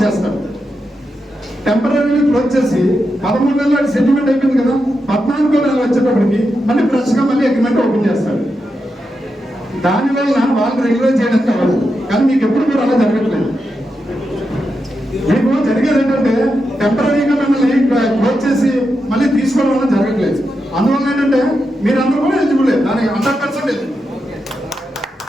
చేస్తారు. టెంపరీలీ క్లోజ్ చేసి 13 నెలలు సెటిల్మెంట్ అయిపోయింది కదా, 14వ నెల వచ్చేటప్పటికి మళ్ళీ ఫ్రెష్ గా మళ్ళీ అగ్రిమెంట్ ఓపెన్ చేస్తారు. దానివల్ల వాళ్ళు రెగ్యులర్ చేయడానికి అవ్వదు. కానీ మీకు ఎప్పుడు కూడా అలా జరగట్లేదు. మీకు జరిగేది ఏంటంటే టెంపరీగా మిమ్మల్ని క్లోజ్ చేసి మళ్ళీ తీసుకోవడం వల్ల జరగట్లేదు. అందువల్ల ఏంటంటే మీరందరూ కూడా ఎలిజిబుల్, దానికి 100% ఎలిజిబుల్.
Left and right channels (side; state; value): both; normal; correlation 0.87